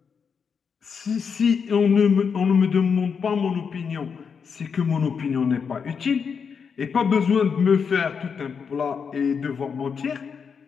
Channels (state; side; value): quieter; right; 6.2 dB